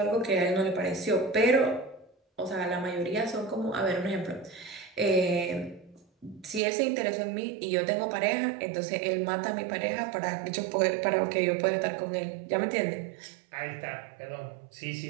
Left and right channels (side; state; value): left; drops out; at 6.6 s